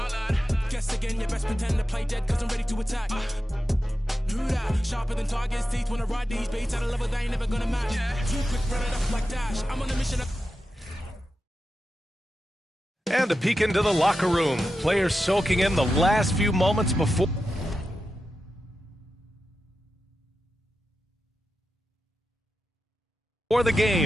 Guess again, you best pretend to play dead, cause I'm ready to attack. Do that, sharper than target's teeth. When I ride these beats at a level they ain't never gonna match. Too quick, run it up like Dash. I'm on a mission. And a peek into the locker room. Players soaking in the last few moments before the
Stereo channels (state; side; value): normal; both; correlation 0.91